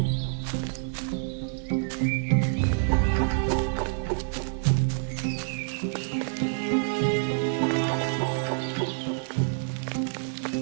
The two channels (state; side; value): silent; left; digital silence